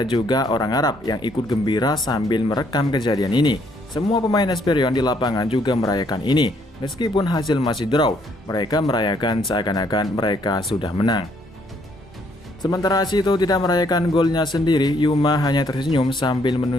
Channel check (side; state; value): both; normal; correlation 0.68